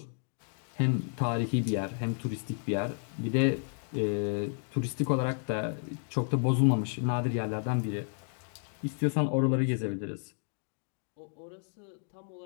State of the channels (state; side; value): silent; right; 57 dB below the other